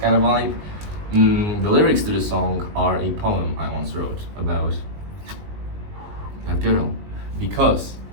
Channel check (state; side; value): late; left; 19 ms